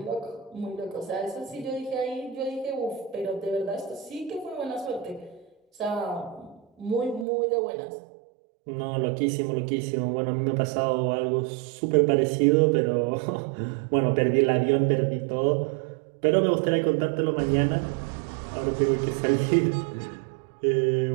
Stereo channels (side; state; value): left; drops out; at 7.2 s